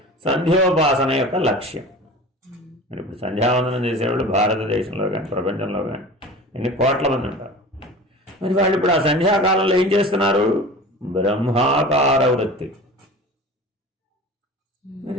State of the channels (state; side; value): normal; both; correlation 0.37